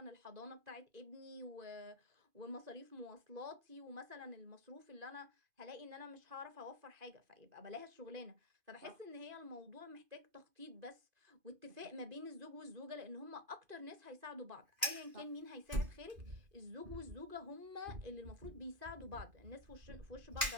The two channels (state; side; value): late; left; 2.5 ms